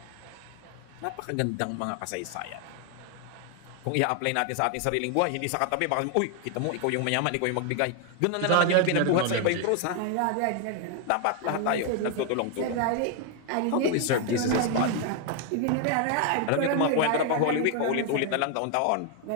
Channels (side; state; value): both; different; correlation 0.00